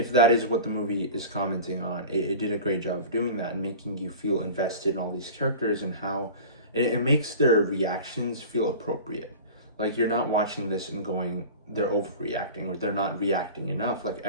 that is what the movie is commenting on, it did a great job of doing that and making you feel invested in all these characters and how it makes their reactions feel appropriate. Like, you're not watching this and going, they're overreacting or they're not reacting enough. Like,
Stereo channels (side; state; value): both; inverted; correlation -0.36